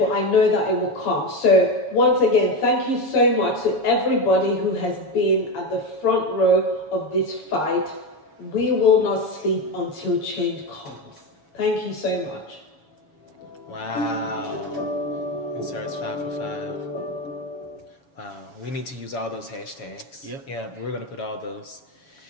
I know that it will come. So once again, thank you so much to everybody who has been at the front row of this fight. We will not sleep until change comes. Thank you so much. Wow. ENDSARS 5 for 5. Wow. We need to use all those hashtags. Yep. Yeah, we're going to put all those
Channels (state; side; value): late; right; 7.2 ms